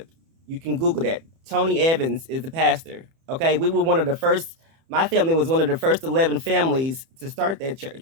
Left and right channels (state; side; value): late; left; 30 ms